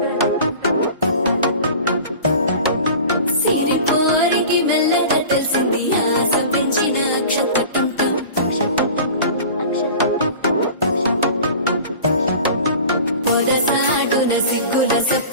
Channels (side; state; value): both; inverted; correlation -0.40